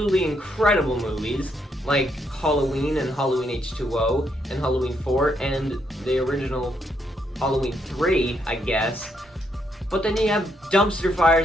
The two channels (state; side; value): normal; both; correlation 0.76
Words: incredible movies, like Halloween and Halloween H2O, and Halloween 4, and the original Halloween 3, I guess. But then you have dumpster